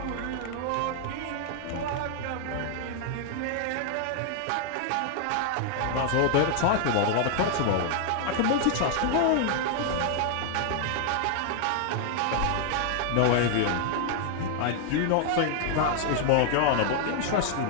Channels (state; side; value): different; both; correlation 0.00